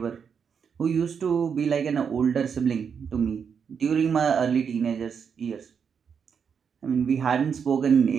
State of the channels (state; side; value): quieter; left; 6.8 dB